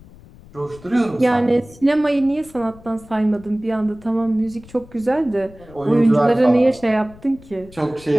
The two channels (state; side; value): noise; left; rumble, 22 dB below the sound